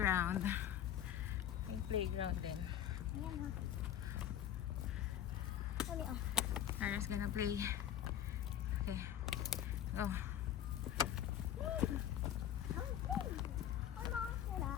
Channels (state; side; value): quieter; right; 10.6 dB